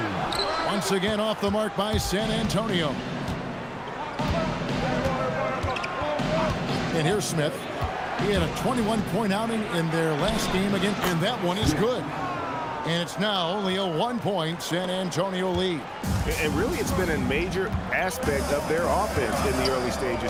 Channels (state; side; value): identical; both; correlation 1.00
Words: Once again off the mark by San Antonio. And here's Smith. He had a 21-point outing in their last game again, and that one is good. And it's now only a 1-point San Antonio lead. And really, it's been a major aspect of their offense in the early